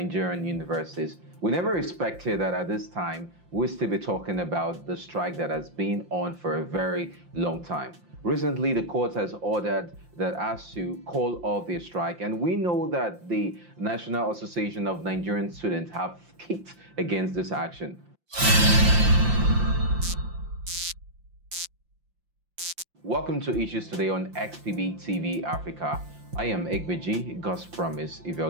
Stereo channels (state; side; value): late; left; 5.7 ms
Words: universities. We never expected that at this time we'll still be talking about the strike that has been on for a very long time. Recently, the court has ordered that Asuu call off their strike, and we know that the National Association of Nigerian Students have kicked against this action. Welcome to Issues Today on Xpbtv Africa. I am Xpbtv, God's promise,